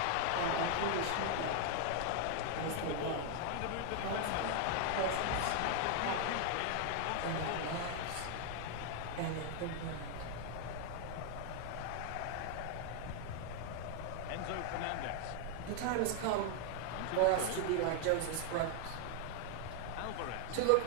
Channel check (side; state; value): both; different; correlation 0.00